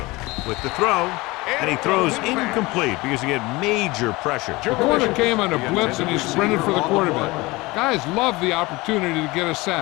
With the throw, and he throws incomplete because he had major pressure. The corner came on a blitz and he sprinted for the quarterback. Guys love the opportunity to get a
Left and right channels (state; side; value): quieter; right; 22.1 dB